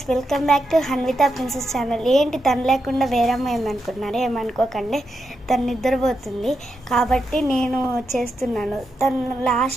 welcome back to Hanvitha princess channel. ఏంటి తను లేకుండా వేరే అమ్మాయి ఏమనుకుంటున్నారే, ఏమనుకోకండి. తను నిద్రపోతుంది కాబట్టి నేను చేస్తున్నాను. తను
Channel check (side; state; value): both; normal; correlation 0.85